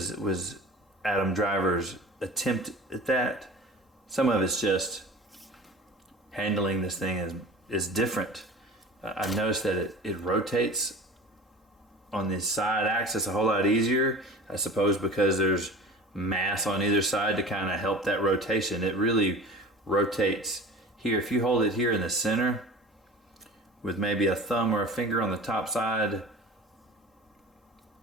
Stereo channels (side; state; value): both; normal; correlation 0.38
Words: Adam Driver's attempt at that, some of it's just handling this thing is different. I've noticed that it rotates on the side axis a whole lot easier. I suppose because there's mass on either side to kind of help that rotation. It really rotates here. If you hold it here in the center with maybe a thumb or a finger on the top side,